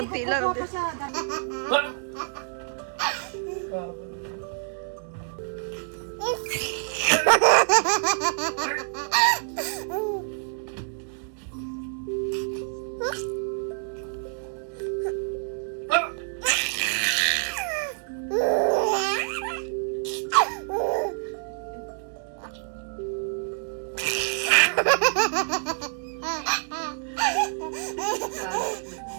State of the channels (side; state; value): left; silent; digital silence